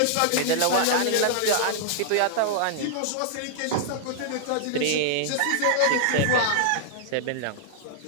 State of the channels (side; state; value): both; different; correlation -0.01